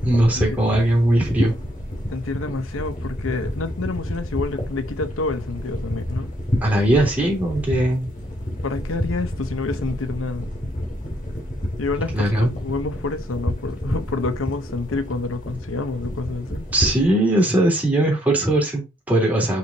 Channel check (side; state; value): both; normal; correlation 0.70